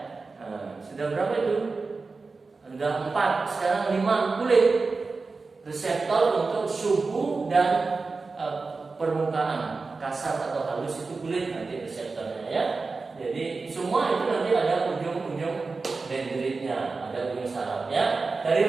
Sudah berapa itu? Sudah 4, sekarang 5. Kulit reseptor untuk suhu dan permukaan kasar atau halus itu kulit nanti reseptornya ya. Jadi semua itu nanti ada ujung-ujung dendritnya, ada ujung sarafnya. Dari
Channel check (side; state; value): left; quieter; 4.1 dB